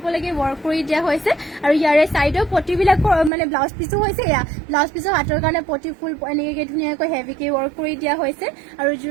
পলৈকে ওয়াৰ্ক কৰি দিয়া হৈছে আৰু ইয়াৰে সাইডৰ পটিবিলাক মানে ব্লাউজ পিচো হৈছে ইয়া ব্লাউজ পিচৰ হাতৰ কাৰণে পটি ফুল এনেকে ধুনীয়াকৈ হেভিকে ওয়াৰ্ক কৰি দিয়া হৈছে আৰু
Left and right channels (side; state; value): left; drops out; at 3.3 s